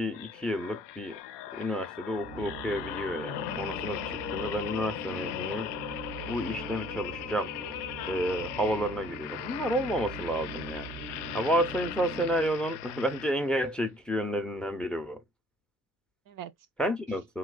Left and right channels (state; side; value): normal; both; correlation 0.57